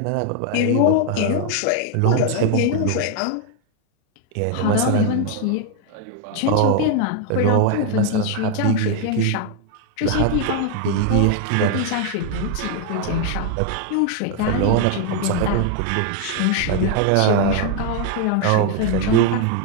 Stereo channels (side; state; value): both; different; correlation 0.00